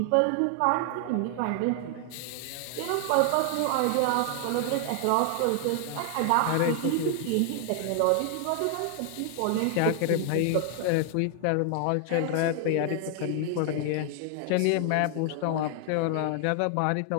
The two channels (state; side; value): different; both; correlation 0.00